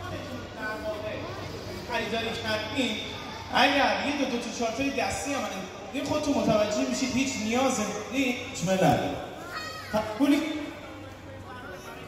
در واقع خریداری کردیم، اگر یه دو تا چارتای دستی هم این خودتون متوجه میشید هیچ نیاز هیچ نداره. پولی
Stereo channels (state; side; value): identical; both; correlation 1.00